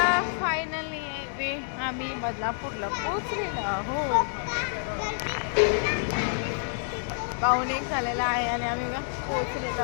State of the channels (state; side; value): silent; right; 59 dB below the other